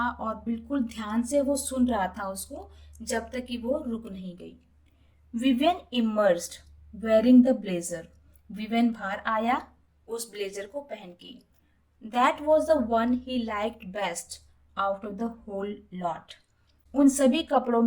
और बिल्कुल ध्यान से वो सुन रहा था उसको, जब तक कि वो रुक नहीं गई। Vivian emerged wearing the blazer. Vivian बाहर आया उस ब्लेजर को पहन के। That was the one he liked best out of the whole lot. उन सभी कपड़ों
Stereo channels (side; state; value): both; identical; correlation 1.00